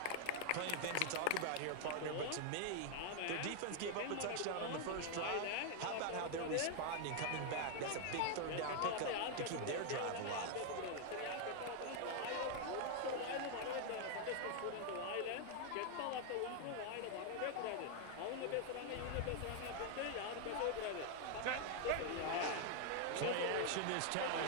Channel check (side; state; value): both; different; correlation 0.00